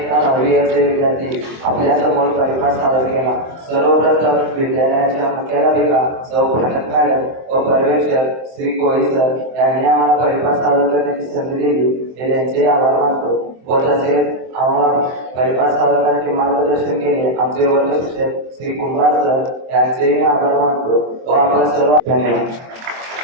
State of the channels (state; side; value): late; left; 23 ms